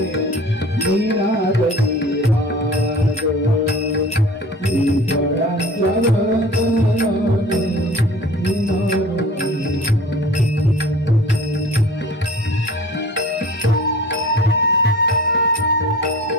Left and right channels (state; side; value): normal; both; correlation 0.43